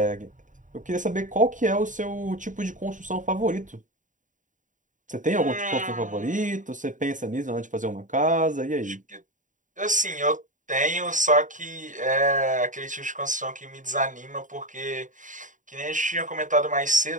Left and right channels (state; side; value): late; left; 0.37 ms